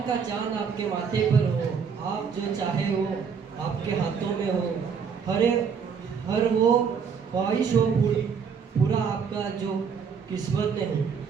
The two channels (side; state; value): left; quieter; 6.4 dB